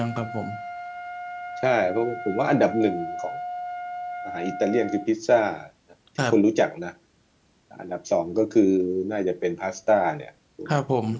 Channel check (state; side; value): identical; both; correlation 1.00